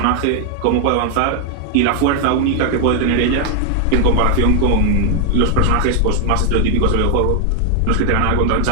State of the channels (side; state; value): both; different; correlation 0.00